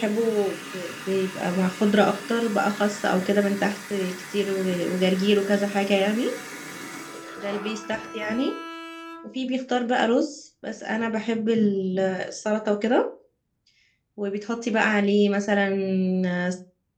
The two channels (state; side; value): identical; both; correlation 1.00